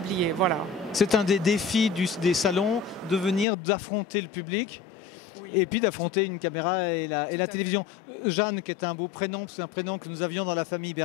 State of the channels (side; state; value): right; drops out; at 3.5 s